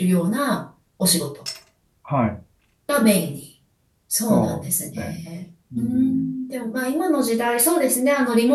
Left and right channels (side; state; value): both; identical; correlation 1.00